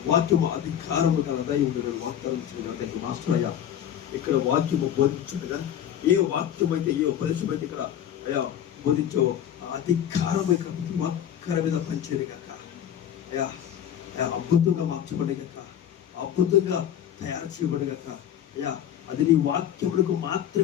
వాక్యము అధికారము గలదా ఉండగా వాగ్దానం చేయడం మాస్టర్ అయ్యా. ఇక్కడ వాక్యము బోధించుండగా ఏ వాక్యం అయితే, ఏ ఉపదేశం అయితే ఇక్కడ అయ్యా బోధించో అధికారం ఇక్కడ ప్రతి ఒక్కరి మీద పనిచేయడు కనుక అయ్యా అద్భుతంగా మార్చబడి కనుక, అద్భుతంగా తయారు చేయబడి కనుక అయ్యా, అది నీ వాక్యములకు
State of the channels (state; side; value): quieter; right; 10.0 dB